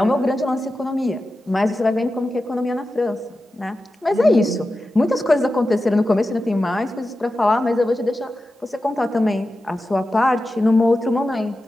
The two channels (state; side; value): normal; both; correlation 0.92